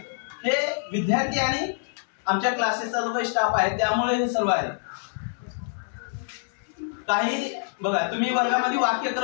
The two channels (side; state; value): right; silent; digital silence